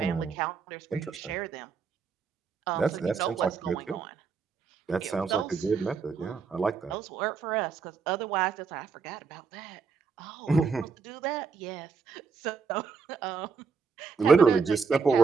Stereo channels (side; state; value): left; quieter; 5.4 dB